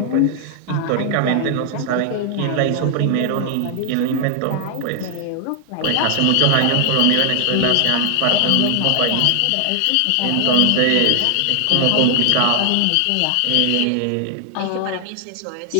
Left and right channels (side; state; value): both; different; correlation 0.00